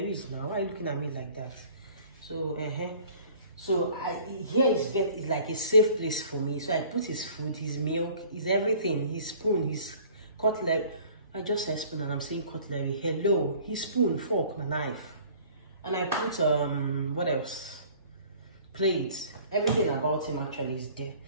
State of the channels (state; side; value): inverted; both; correlation -0.51